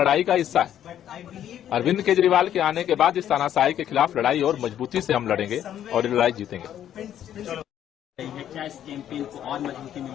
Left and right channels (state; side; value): quieter; right; 10.7 dB